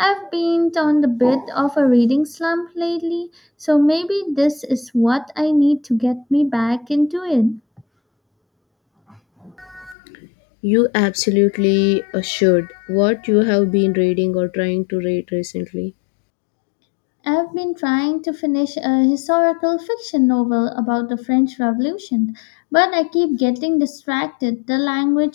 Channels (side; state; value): right; drops out; at 10.0 s